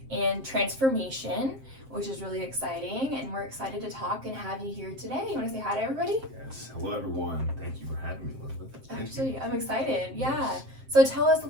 and transformation, which is really exciting. And we're excited to talk and have you here today. You want to say hi to everybody? Yes. Hello, everyone. Thank you for having me, Elizabeth. Absolutely. I'm excited. Yeah. So tell us a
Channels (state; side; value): late; left; 7.6 ms